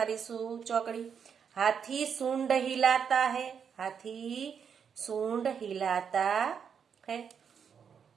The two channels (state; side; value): quieter; left; 7.1 dB